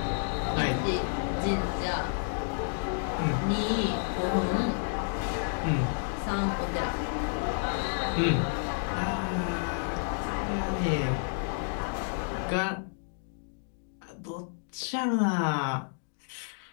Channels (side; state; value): right; silent; digital silence